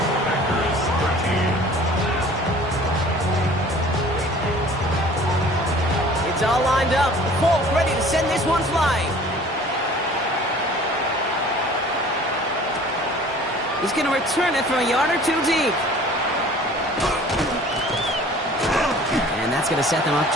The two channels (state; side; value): normal; both; correlation 0.48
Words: Packers 13. It's all lined up. Folk ready to send this one flying. He's going to return it from a yard or two deep. And that's going to set them up